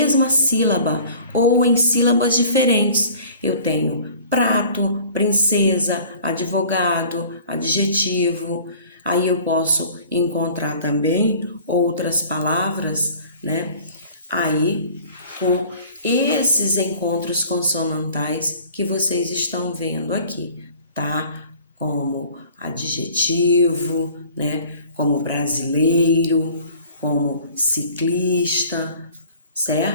sílaba ou em sílabas diferentes. Eu tenho prato, princesa, advogado, adjetivo. Aí eu posso encontrar também outras palavras, aí com esses encontros consonantais que vocês estão vendo aqui, tá? Como adjetivo, como brasileiro, como ciclista,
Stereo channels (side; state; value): both; inverted; correlation -0.48